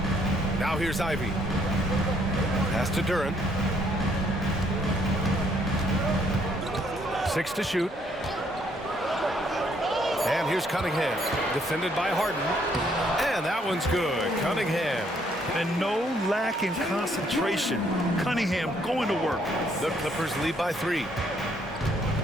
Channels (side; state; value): both; normal; correlation 0.68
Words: Now here's Ivy. Pass to Duren. 6 to shoot. And here's Cunningham, defended by Harden. And that one's good. Cunningham. And no lack in concentration. Cunningham going to work. The Clippers lead by 3.